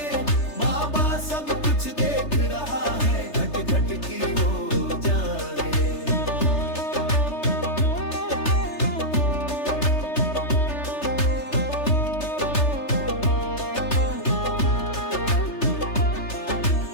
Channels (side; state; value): right; late; 3.3 ms